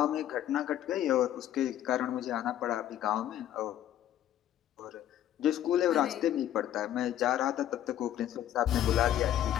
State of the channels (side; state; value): right; quieter; 11.7 dB